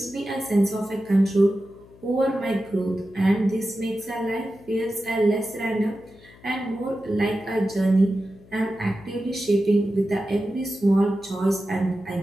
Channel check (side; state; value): left; noise; hum, 24 dB below the sound